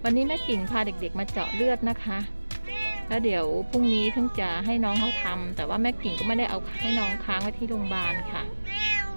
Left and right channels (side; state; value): both; inverted; correlation -1.00